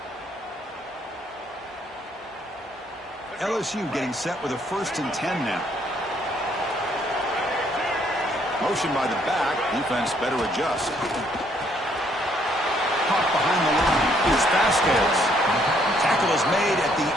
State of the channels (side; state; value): both; normal; correlation 0.67